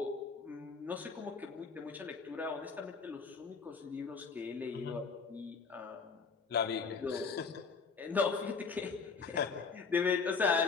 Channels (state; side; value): quieter; right; 5.1 dB